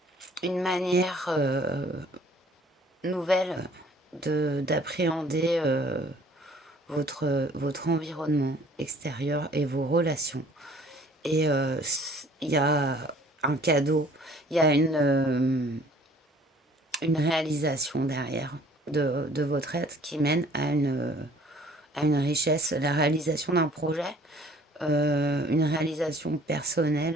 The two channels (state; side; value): normal; both; correlation 0.55